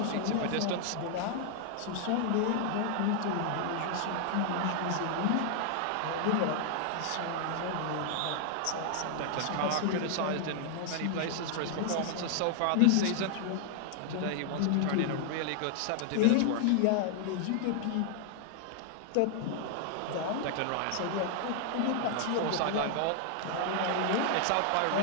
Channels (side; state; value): both; different; correlation 0.00